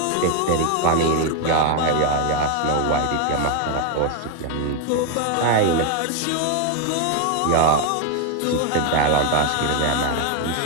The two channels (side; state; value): both; different; correlation 0.01